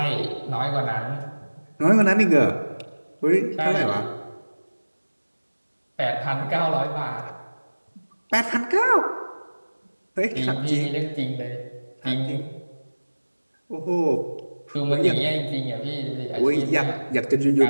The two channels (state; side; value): inverted; both; correlation -1.00